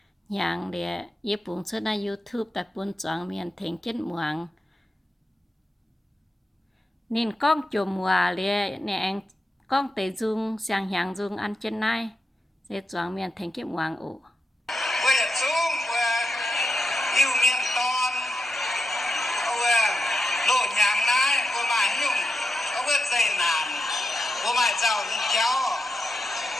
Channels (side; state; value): both; normal; correlation 0.87